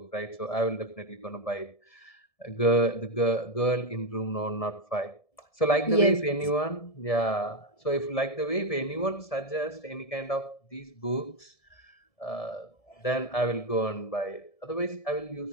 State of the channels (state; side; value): late; right; 1.7 ms